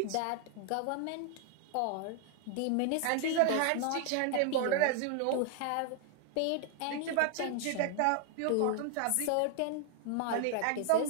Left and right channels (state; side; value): different; both; correlation 0.00